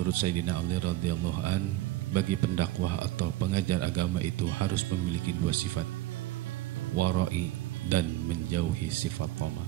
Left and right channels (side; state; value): left; quieter; 16.0 dB